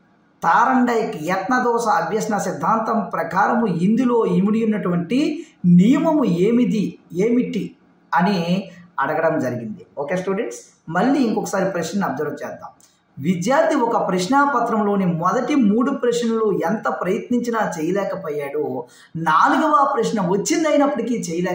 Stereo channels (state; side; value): identical; both; correlation 1.00